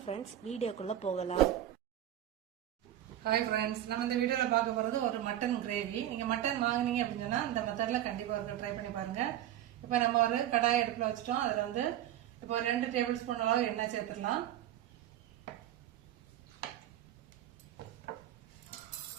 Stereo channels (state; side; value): quieter; left; 12.2 dB